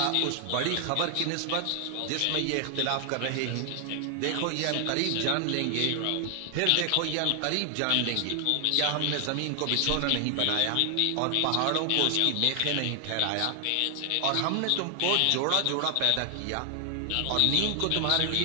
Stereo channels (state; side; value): different; both; correlation 0.00